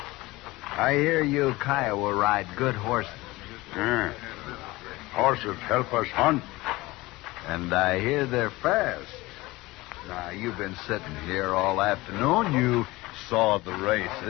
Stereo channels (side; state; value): right; quieter; 20.4 dB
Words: I hear you Kiowa ride good horses. Yeah. Horses help us hunt. And I hear they're fast. Now, you've been sitting here all afternoon. You saw the